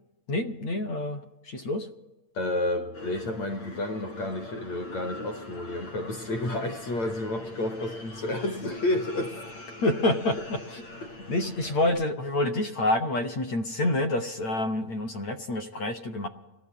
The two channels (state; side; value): late; right; 8.8 ms